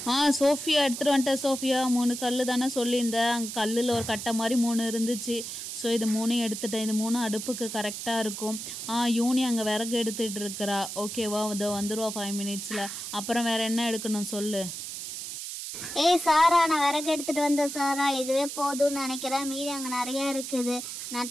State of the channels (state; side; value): noise; right; hiss, 7 dB below the sound